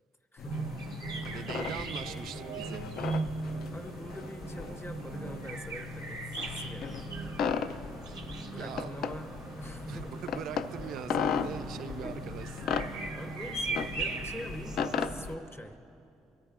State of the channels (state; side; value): normal; both; correlation 0.60